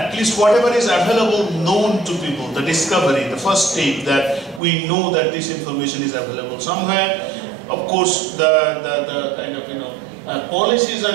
least whatever is available known to people, the discovery, the first step that we know that this information is available somewhere. Of course, the kind of policies are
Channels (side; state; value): left; drops out; at 4.6 s